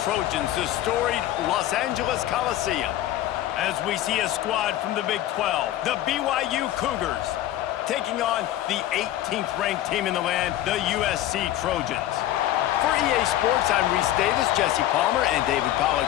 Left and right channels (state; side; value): quieter; right; 13.5 dB